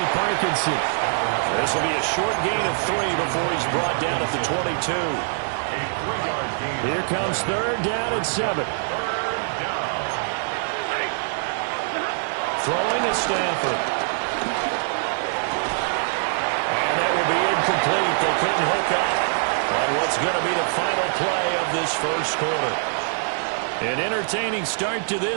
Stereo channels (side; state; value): left; silent; digital silence